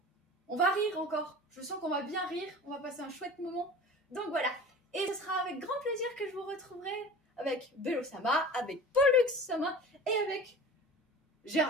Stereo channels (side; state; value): both; normal; correlation 0.38